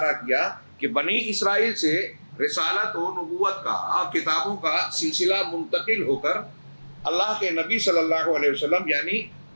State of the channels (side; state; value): both; inverted; correlation -1.00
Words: کیا کہ بنی اسرائیل سے رسالت و نبوت کا اور کتابوں کا سلسلہ منتقل ہو کر اللہ کے نبی صلی اللہ علیہ وسلم یعنی